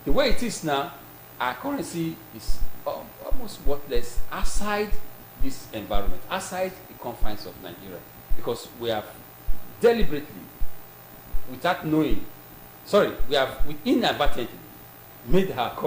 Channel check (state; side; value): identical; both; correlation 1.00